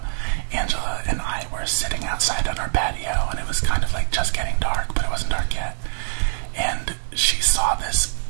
Angela and I were sitting outside on our patio, and it was kind of just getting dark, but it wasn't dark yet. And she saw this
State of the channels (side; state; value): left; silent; digital silence